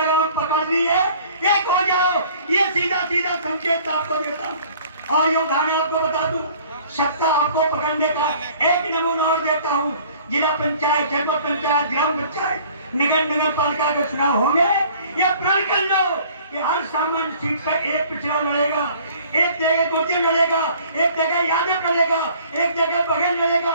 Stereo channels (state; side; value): inverted; both; correlation -0.52